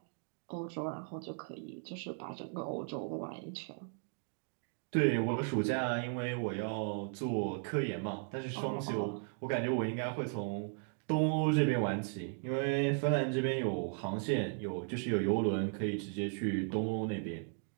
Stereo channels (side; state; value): left; silent; 54 dB below the other